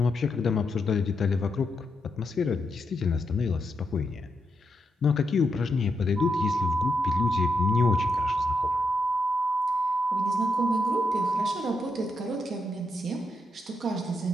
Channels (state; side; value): normal; both; correlation 0.82